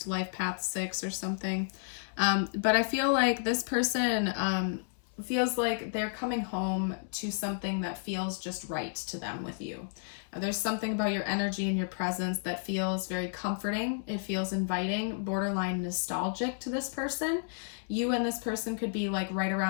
life path 6 or something. But I feel like this person feels like they're coming home to something that feels just right to them with you. There's something about your energy and your presence that feels very comforting. It feels inviting, borderline nostalgic to this person. You and this person could be like right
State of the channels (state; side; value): silent; right; digital silence